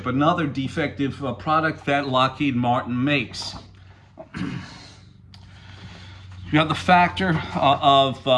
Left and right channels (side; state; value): both; identical; correlation 1.00